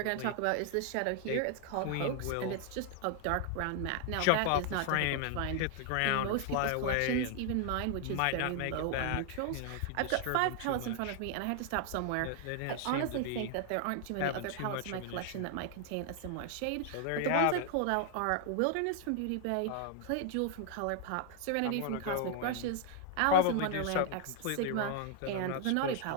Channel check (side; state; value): both; different; correlation 0.00